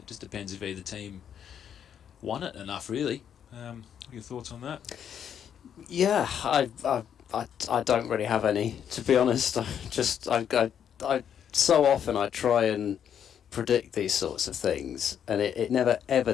just depends if either team won it enough, really. What are your thoughts on that? Yeah, I don't really have any, to be honest. I so often I try and predict these sorts of things, and it never ever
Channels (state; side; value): quieter; right; 8.8 dB